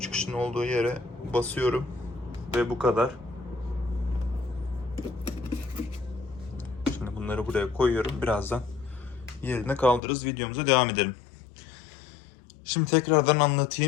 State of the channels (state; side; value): drops out; right; at 10.0 s